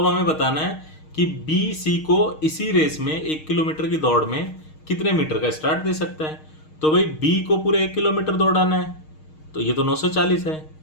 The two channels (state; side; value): late; right; 6.4 ms